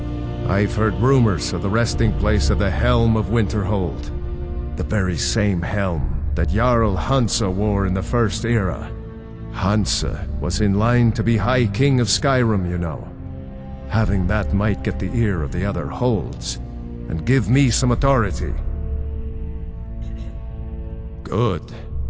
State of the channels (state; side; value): identical; both; correlation 1.00